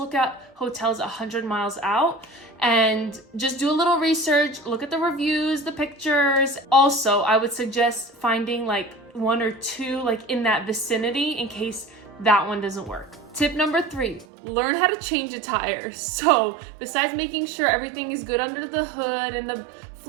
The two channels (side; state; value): left; drops out; at 14.2 s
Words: at hotels 100 miles out and just do a little research, look at the reviews, the pictures. Also, I would suggest finding like 1 or 2 like in that vicinity in case that one doesn't work. Tip number 3, learn how to change a tire. So besides making sure everything is good under the hood and the